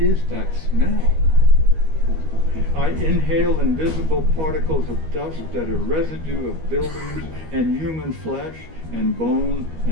that smell. I inhale invisible particles of dust that are residue of buildings and human flesh and bone,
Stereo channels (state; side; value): late; left; 13 ms